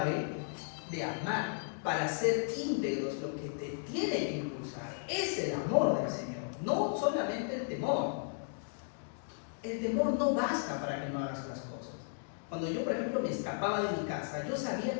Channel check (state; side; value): silent; right; digital silence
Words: de amar. Para ser íntegros, lo que te tiene que impulsar es el amor del Señor, no solamente el temor. El temor no basta para que no hagas las cosas. Cuando yo, por ejemplo, me escapaba de mi casa, yo